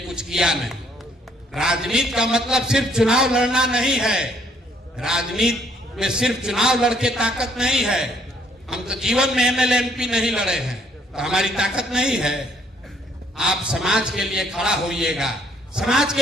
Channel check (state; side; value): normal; both; correlation 0.65